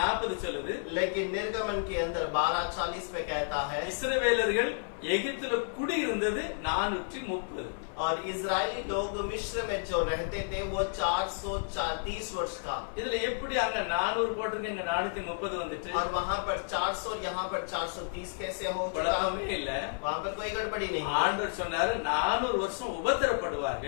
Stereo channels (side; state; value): right; silent; 57 dB below the other